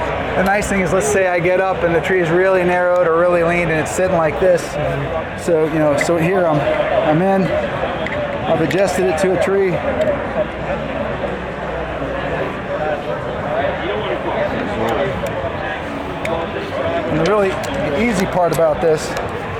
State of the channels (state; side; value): identical; both; correlation 1.00